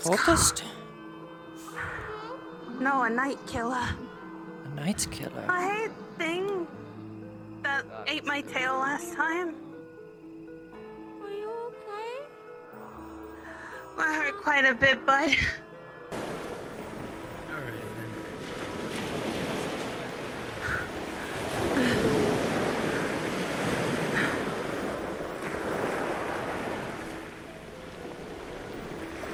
No, a night killer. A night killer? I hate thing that ate my tail last time. Are you okay? I hurt quite a bit, bud.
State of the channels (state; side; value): identical; both; correlation 1.00